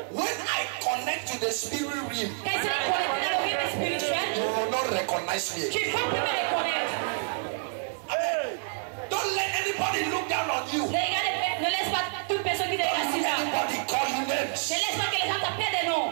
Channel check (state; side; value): silent; left; digital silence